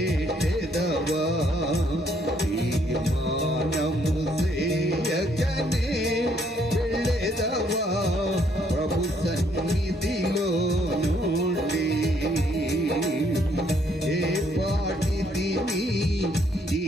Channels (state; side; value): normal; both; correlation 0.68